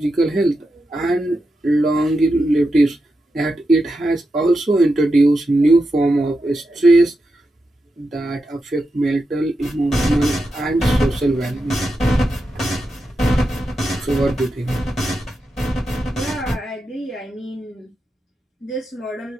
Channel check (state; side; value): normal; both; correlation 0.88